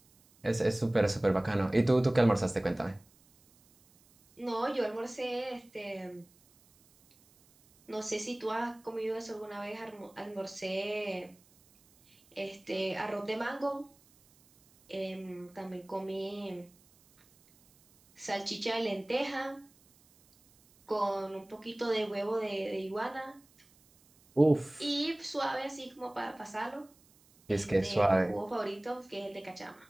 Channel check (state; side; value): noise; right; hiss, 30 dB below the sound